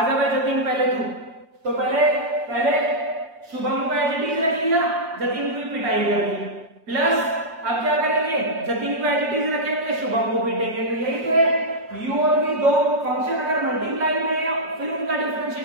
जा भाई जतिन पहले तू, तो पहले शुभम को एज इट इज रख लिया, जतिन की पिटाई कर दी, प्लस अब क्या करेंगे, जतिन को एज इट इज रखेंगे, शुभम को पीटेंगे, तो यही तो है, u और v दो फंक्शन अगर मल्टीप्लाई में है फिर उनका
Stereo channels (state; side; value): late; left; 6.1 ms